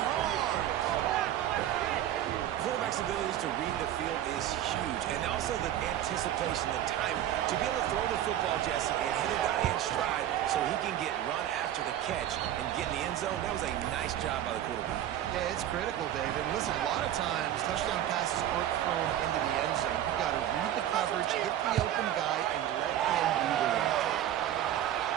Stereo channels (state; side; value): quieter; left; 11.7 dB